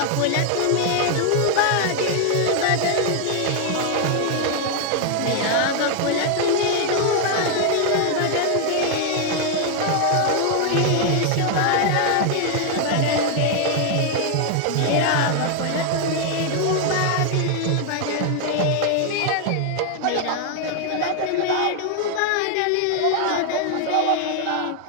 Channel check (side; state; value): both; different; correlation 0.00